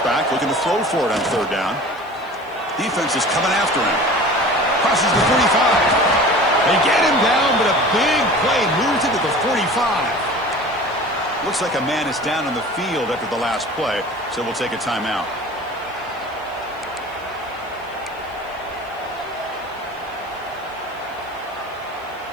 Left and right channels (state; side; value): noise; right; hiss, 29 dB below the sound